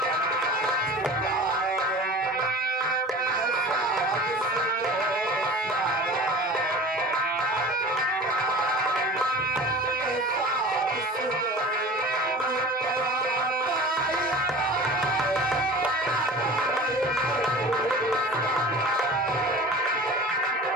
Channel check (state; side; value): normal; both; correlation 0.39